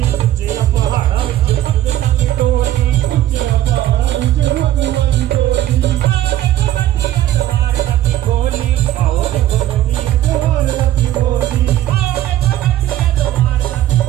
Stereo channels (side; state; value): left; quieter; 13.3 dB